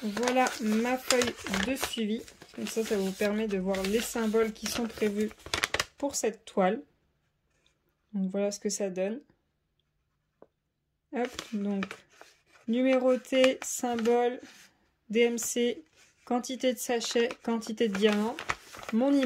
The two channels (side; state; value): both; identical; correlation 1.00